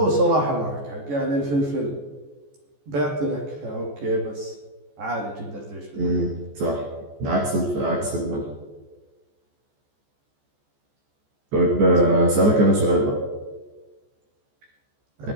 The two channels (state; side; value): late; left; 14 ms